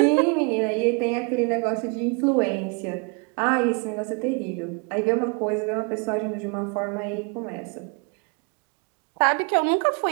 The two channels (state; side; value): quieter; left; 34.1 dB